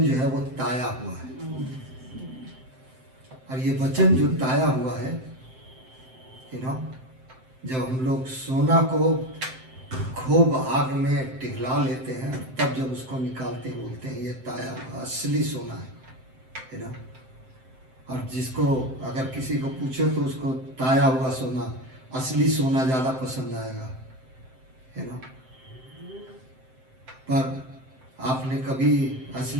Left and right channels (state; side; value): late; left; 7.7 ms